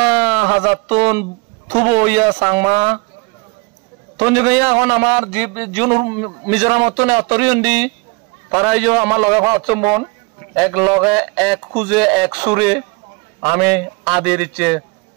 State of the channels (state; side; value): quieter; left; 28.6 dB